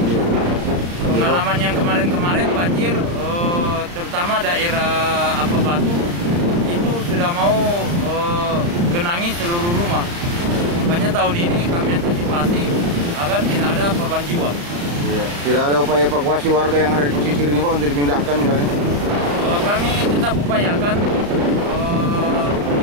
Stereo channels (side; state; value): left; late; 35 ms